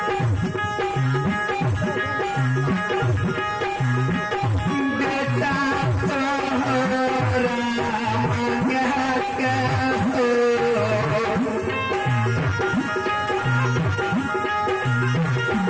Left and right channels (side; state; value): both; identical; correlation 1.00